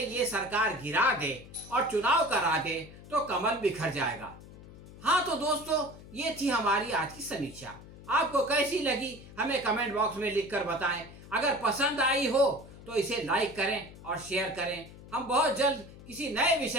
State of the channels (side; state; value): left; noise; hum, 18 dB below the sound